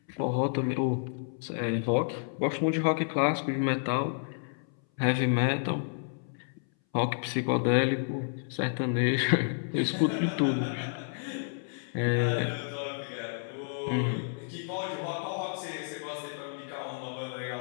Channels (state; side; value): silent; right; 58 dB below the other